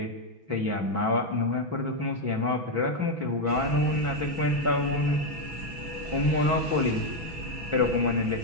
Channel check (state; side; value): late; left; 6.1 ms